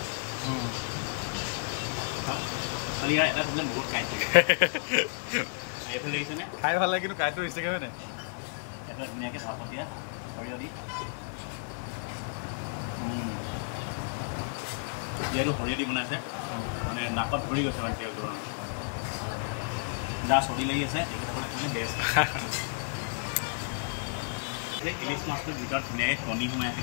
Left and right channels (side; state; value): right; silent; 57 dB below the other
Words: খালি ইয়াৰ এটা প্ৰব্লেম বহুত কাঁইট থাকে এইফালে দেখিছেনে খাই ভাল লাগে কিন্তু কাঁইটটো ৰিষ্টেকে হয় নাই এইফালে ধুনীয়াকৈ ভাপত দিয়া সৰিয়হ দি যিহেতু সৰিয়হ দি বনাইছে মানে নাকত ধৰি গৈছে মানে তেলটো যাৰ চৰ্দি লাগি আছে তেখেতসকলে কাৰণে বেষ্ট ইলিচ মাছটোৰ ভিতৰত ধুনীয়াকৈ কণী সোমাই আছে